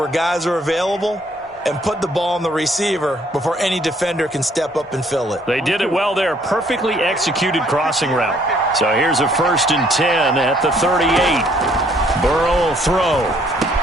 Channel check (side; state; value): both; normal; correlation 0.64